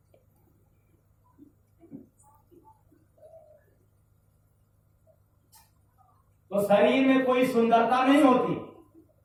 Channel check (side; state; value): both; identical; correlation 1.00